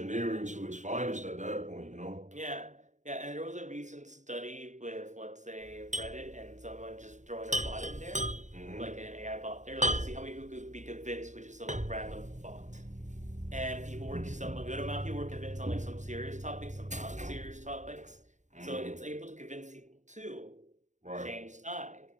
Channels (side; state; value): left; late; 0.35 ms